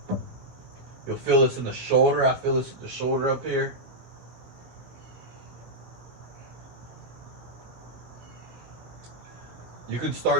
You'll feel this in the shoulder. I feel this in the shoulder up here. You can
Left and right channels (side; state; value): left; late; 16 ms